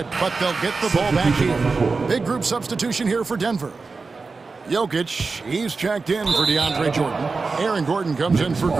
but they'll get the ball back here. Big group substitution here for Denver. Jokic, he's checked in for DeAndre Jordan. Aaron Gordon comes in for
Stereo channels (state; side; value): quieter; left; 4.2 dB